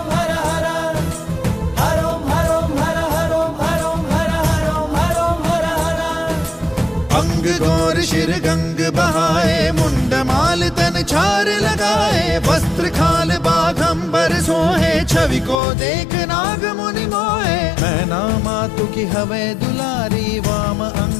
हर हर। हरोम हरोम हर हरोम हरोम हर हरोम हरोम हर हर। अंग गौर शिर गंग बहाए मुंड माल तन छार लगाए। वस्त्र खाल बाघंबर सोहे छवि को देख नाग मुनि मोहे। मैना मातु की हवे दुलारी वाम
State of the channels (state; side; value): drops out; right; at 15.6 s